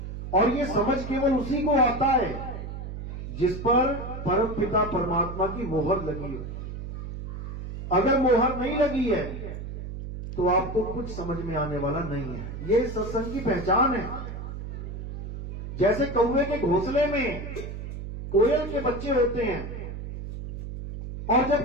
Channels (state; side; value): noise; right; hum, 8 dB below the sound